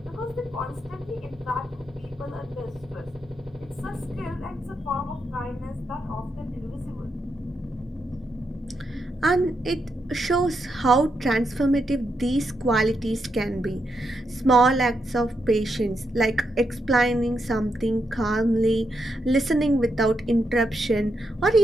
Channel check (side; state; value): both; normal; correlation 0.82